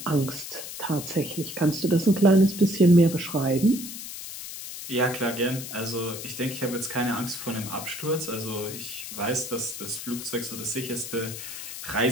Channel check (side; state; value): left; noise; hiss, 9 dB below the sound